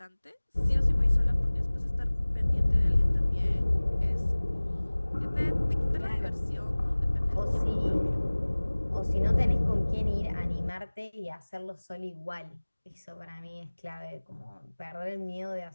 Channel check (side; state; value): both; inverted; correlation -1.00